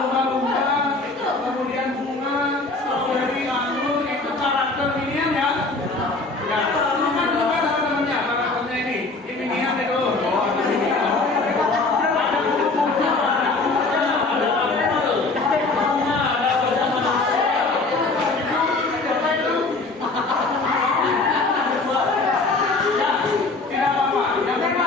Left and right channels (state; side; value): quieter; right; 3.5 dB